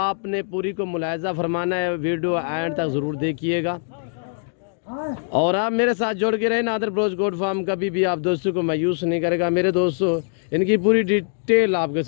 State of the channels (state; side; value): silent; right; digital silence